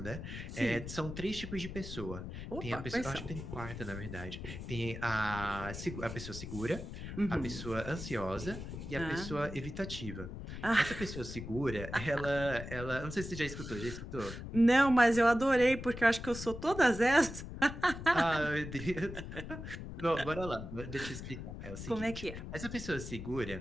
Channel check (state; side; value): noise; left; rumble, 9 dB below the sound